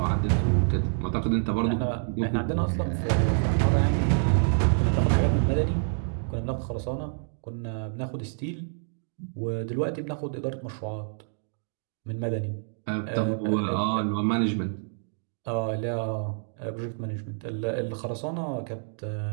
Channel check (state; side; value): silent; left; digital silence